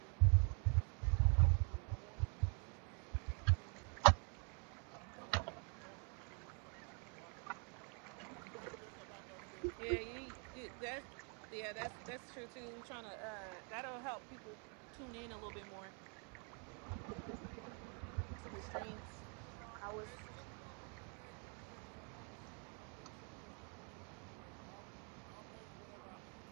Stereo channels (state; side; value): quieter; left; 38.1 dB